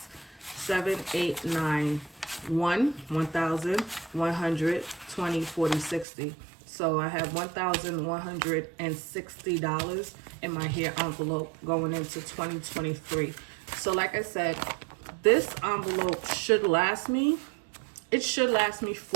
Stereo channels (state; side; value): drops out; left; at 6.1 s